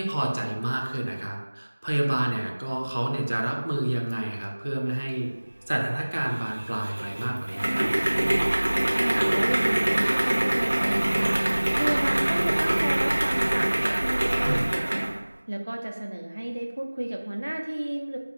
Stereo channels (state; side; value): inverted; both; correlation -1.00